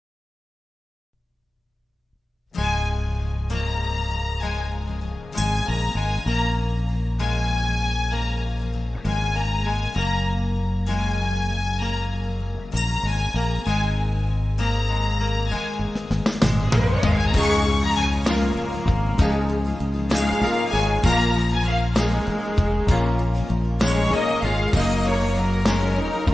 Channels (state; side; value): normal; both; correlation 0.95